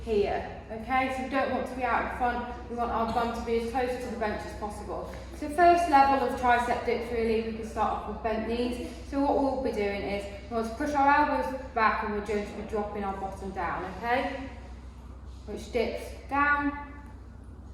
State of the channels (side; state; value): both; identical; correlation 1.00